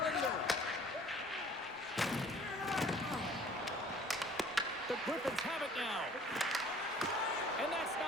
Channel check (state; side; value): normal; both; correlation 0.52